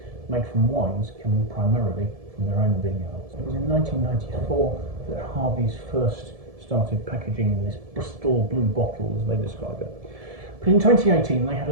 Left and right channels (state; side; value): late; left; 1.7 ms